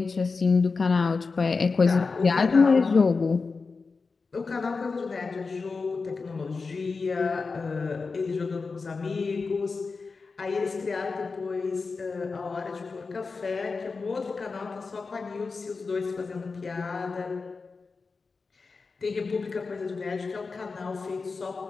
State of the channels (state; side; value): quieter; right; 4.4 dB